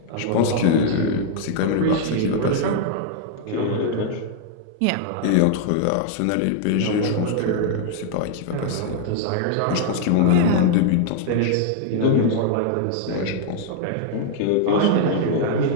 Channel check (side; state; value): both; different; correlation -0.01